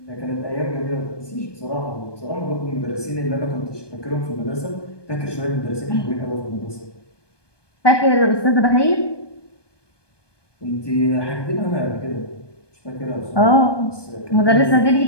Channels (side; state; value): right; late; 1.2 ms